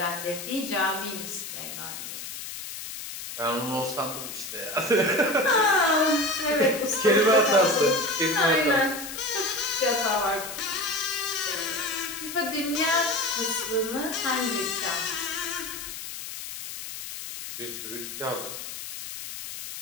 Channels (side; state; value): left; noise; hiss, 9 dB below the sound